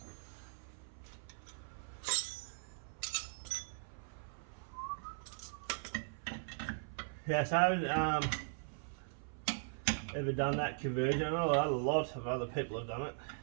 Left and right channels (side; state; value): left; silent; 51 dB below the other